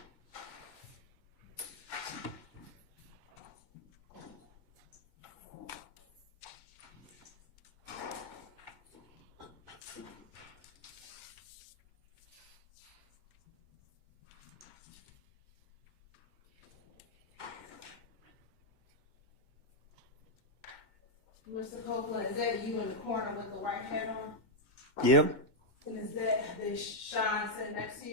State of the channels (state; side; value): late; right; 2.1 ms